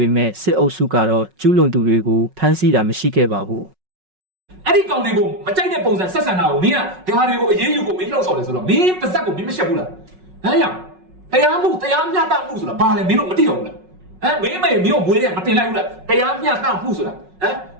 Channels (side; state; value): left; late; 5.4 ms